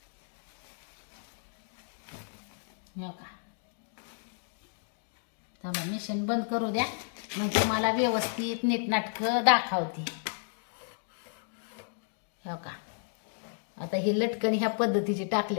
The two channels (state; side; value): silent; right; digital silence